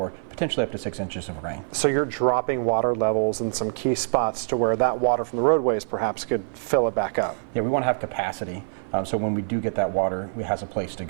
potentially up to 6 inches of rain. So you're dropping water levels in some key spots to where that water from the roadways perhaps could fill it back up. Yeah, we want to have capacity, so when we do get that water, it has a place to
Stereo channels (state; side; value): silent; left; 55 dB below the other